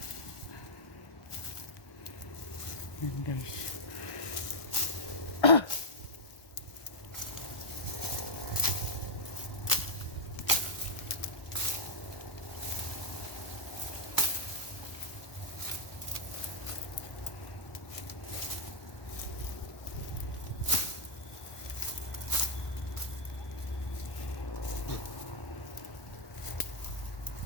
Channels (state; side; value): late; right; 1.2 ms